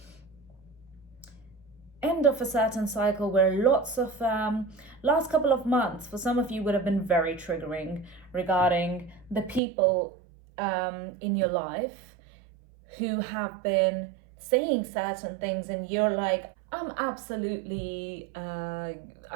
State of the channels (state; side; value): drops out; left; at 9.6 s